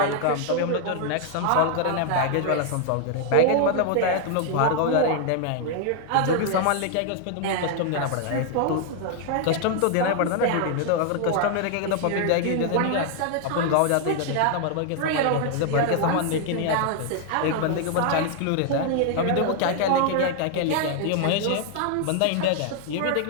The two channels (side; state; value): both; different; correlation 0.00